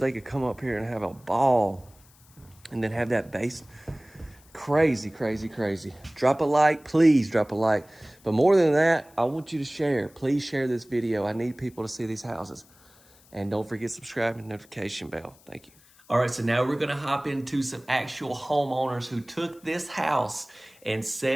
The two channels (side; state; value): left; noise; hiss, 28 dB below the sound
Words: could come up here and have a ball and then have that base. Crazy, crazy, crazy. Drop a like, please drop a like. But more than that, I want you to share. Please share this video. I need people to see these houses. And don't forget to subscribe and notification bell. Thank you. All right, so now we're gonna hop into some actual homeowners who took this house and